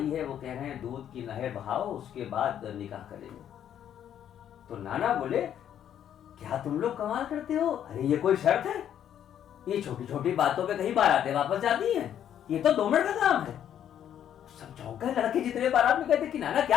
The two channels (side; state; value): right; quieter; 10.0 dB